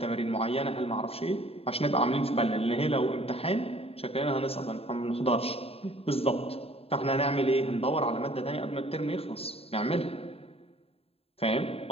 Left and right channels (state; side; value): late; right; 0.28 ms